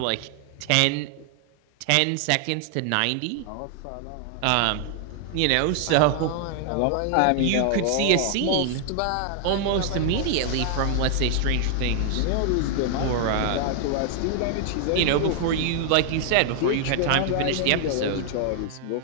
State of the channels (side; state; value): both; different; correlation 0.00